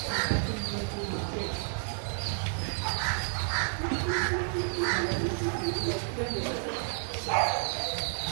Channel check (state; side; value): silent; left; 57 dB below the other